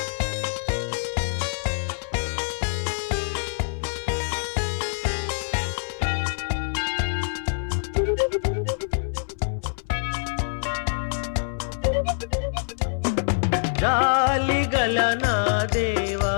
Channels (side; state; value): right; silent; 60 dB below the other